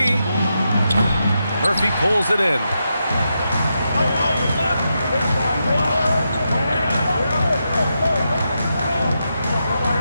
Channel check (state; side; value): inverted; both; correlation -0.85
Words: Murphy pulls it in.